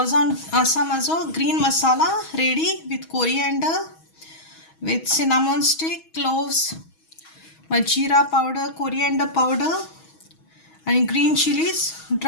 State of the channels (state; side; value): late; right; 6.2 ms